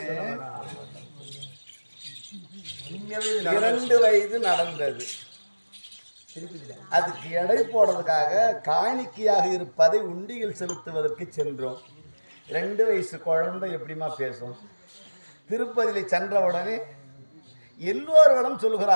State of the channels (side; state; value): both; inverted; correlation -1.00